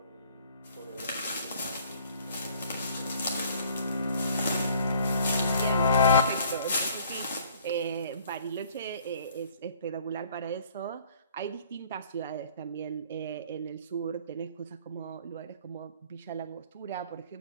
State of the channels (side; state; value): both; inverted; correlation -0.57